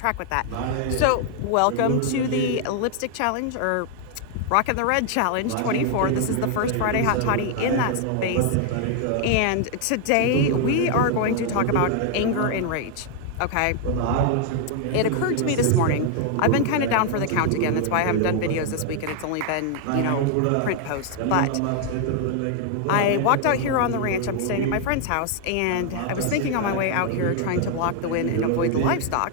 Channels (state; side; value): different; both; correlation 0.00